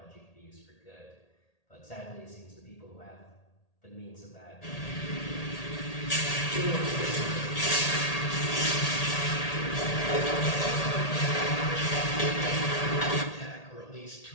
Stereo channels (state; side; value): late; right; 1.8 ms